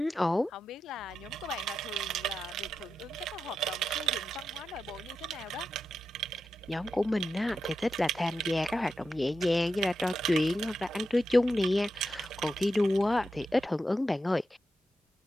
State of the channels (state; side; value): normal; both; correlation 0.89